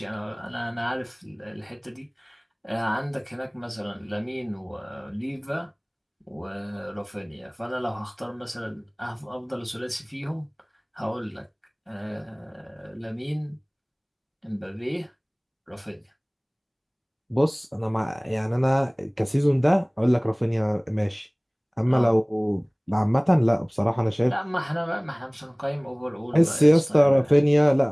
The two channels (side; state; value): both; identical; correlation 1.00